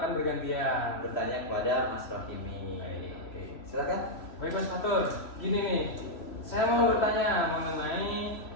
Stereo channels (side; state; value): right; late; 3.0 ms